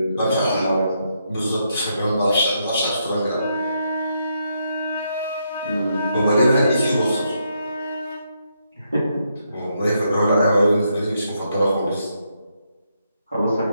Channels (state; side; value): inverted; both; correlation -0.79